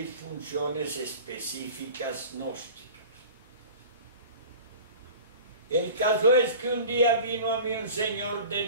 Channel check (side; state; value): both; inverted; correlation -0.39